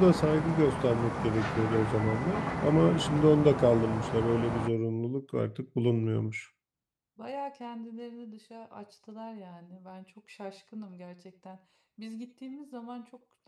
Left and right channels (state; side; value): identical; both; correlation 1.00